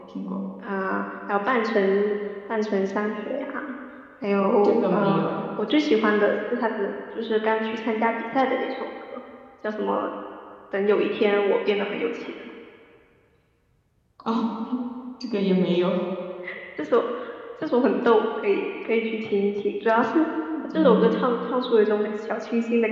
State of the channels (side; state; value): both; identical; correlation 1.00